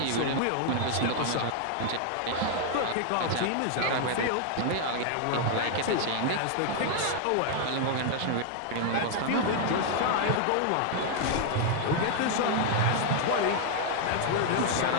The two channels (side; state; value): both; different; correlation 0.00